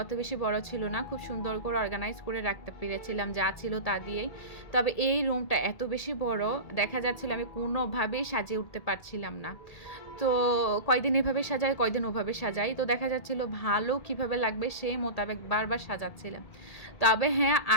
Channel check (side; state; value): right; late; 1.8 ms